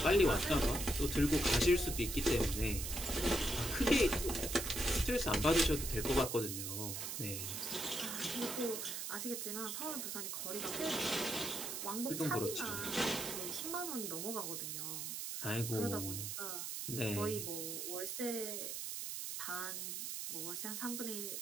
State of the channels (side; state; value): right; noise; hiss, 4 dB below the sound